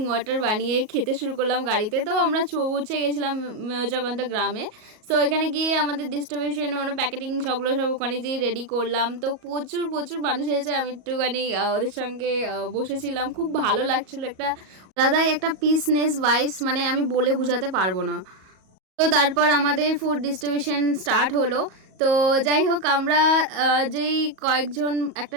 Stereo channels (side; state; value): left; late; 38 ms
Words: ওয়াটার বানিয়ে খেতে শুরু করলাম গাড়িতে। তো আমরা পৌঁছে গেছিলাম জগন্ত গ্রামে। সো এখানে গিয়ে আমাদের ডিস্ট্রিবিউশন মানে প্যাকেটিং সবগুলো সব ওখানে যেয়ে রেডি করলাম। তো প্রচুর প্রচুর মানুষ এসেছে, আমি একটুখানি ওদের সঙ্গে বসেছিলাম, খুব ভালো লাগছিলো। একটা আলাদাই একটা পিসনেস ভাইবস, মানে আমি বলে বোঝাতে পারবো না। তো তারপর আমাদের ফুড ডিস্ট্রিবিউশন স্টার্ট হলো। তো যাই হোক, আমরা যেই কয়েকজন একটা